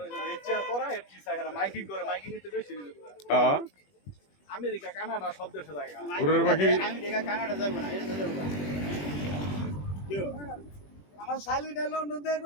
হইছে রেচার করা এর কি সাহেরা মাইকিং করে মাইকিং এতে বেশি দিবে হ্যাঁ আমেরিকা কানাডা সব দেশে জায়গা ঘুরের পাখি আমি দেখা কানাডা যাইব না এটা যাইব না আমার শালিটা লন্ডন দেখ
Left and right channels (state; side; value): late; right; 21 ms